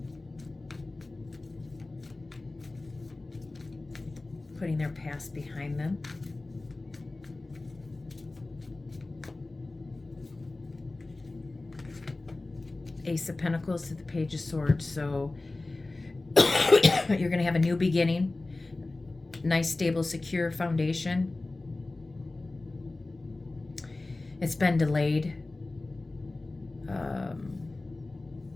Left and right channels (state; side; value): quieter; right; 3.1 dB